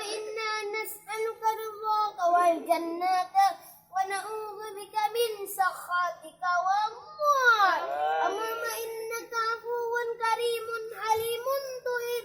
إنا نسألك رضاك والجنة ونعوذ بك من سخطك والنار. اللهم إنك عفو كريم حليم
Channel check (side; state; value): both; identical; correlation 1.00